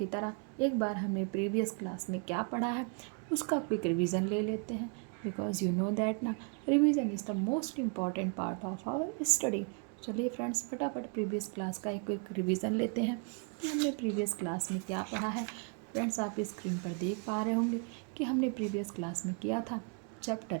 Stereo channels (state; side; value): quieter; left; 37.3 dB